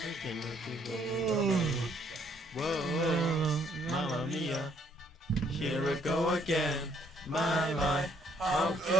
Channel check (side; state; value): both; normal; correlation 0.66